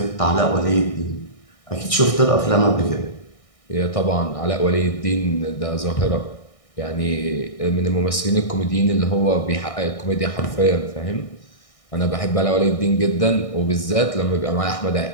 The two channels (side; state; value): right; late; 1.6 ms